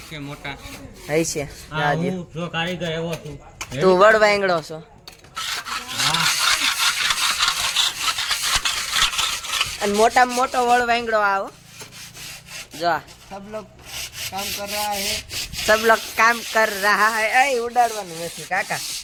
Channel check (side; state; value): both; identical; correlation 1.00